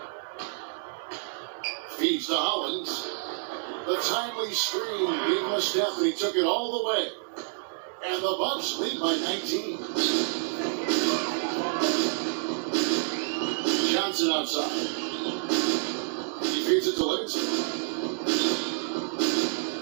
Feeds to Hollins. The timely screen gave him a step, and he took it all the way. And the Bucks lead by 19. Johnson outside. He feeds it to Livingston.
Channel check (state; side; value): silent; left; digital silence